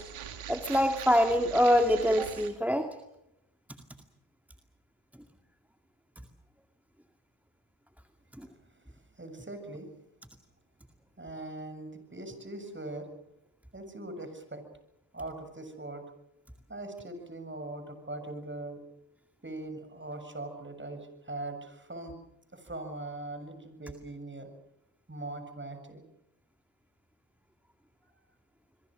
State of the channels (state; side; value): normal; both; correlation 0.76